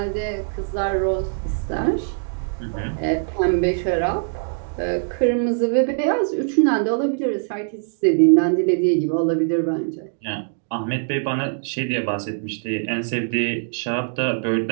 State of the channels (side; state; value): left; silent; digital silence